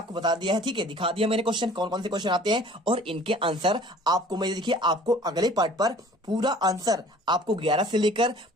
बता दिया है, ठीक है दिखा दिया मैंने क्वेश्चन कौन कौन से क्वेश्चन आते हैं और इनके आंसर आपको मैं देखिए आपको अगले पार्ट पर पूरा आंसर आपको 11 से लेकर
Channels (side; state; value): both; normal; correlation 0.49